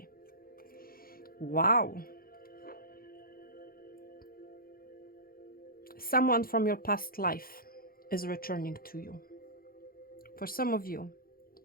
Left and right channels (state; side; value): late; right; 0.43 ms